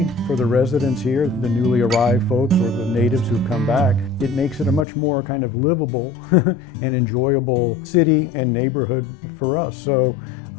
for the residents here, the newly arrived folks or the natives who've come back, it makes it a much more kind of livable and enjoyable city and neighborhood for us. So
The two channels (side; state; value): right; drops out; at 4.9 s